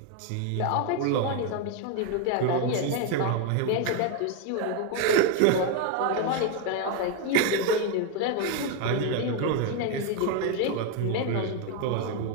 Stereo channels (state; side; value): different; both; correlation 0.01